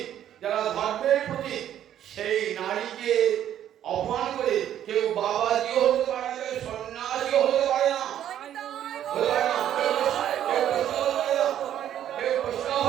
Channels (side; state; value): left; quieter; 10.9 dB